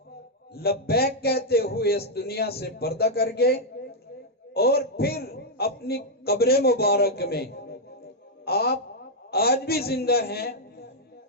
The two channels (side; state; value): both; normal; correlation -0.02